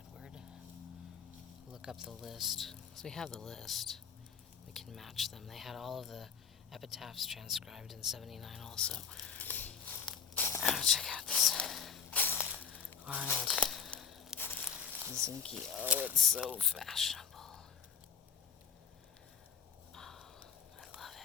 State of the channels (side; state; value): right; quieter; 6.6 dB